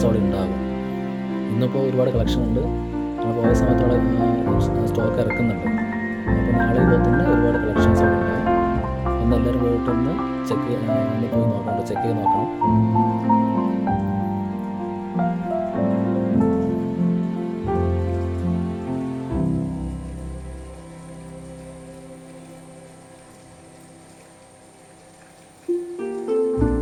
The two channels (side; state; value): both; identical; correlation 1.00